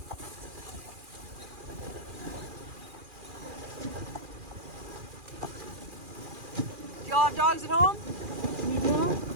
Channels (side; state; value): left; late; 2.4 ms